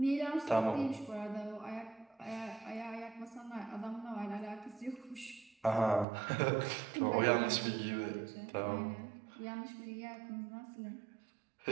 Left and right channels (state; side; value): drops out; left; at 6.1 s